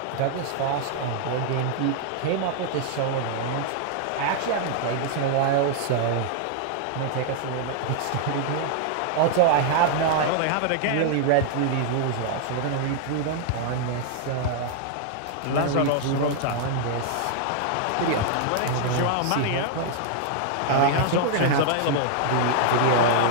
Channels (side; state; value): both; different; correlation 0.00